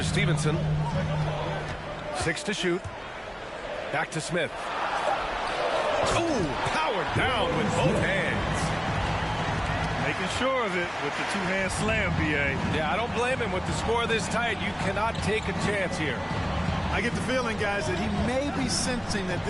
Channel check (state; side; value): identical; both; correlation 1.00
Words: Stevenson. 6 to shoot. Back to Smith. Ooh, powered down with both hands. Making sure of it with the 2-hand slam, BA. Yeah, I don't blame him. With the score this tight, you cannot take a chance here. I get the feeling, guys, that he may be sensing that